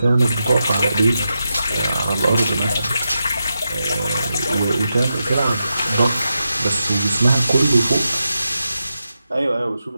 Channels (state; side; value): inverted; both; correlation -0.88